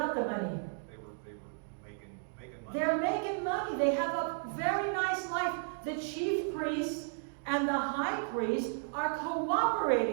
the money? They were making money. They're making money. They have a very nice life. The chief priests and the high priest are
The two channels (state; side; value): silent; left; digital silence